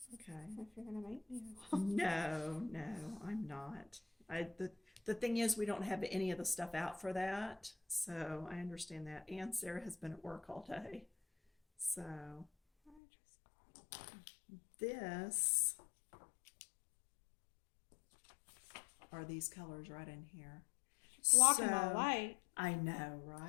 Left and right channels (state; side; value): drops out; right; at 13.0 s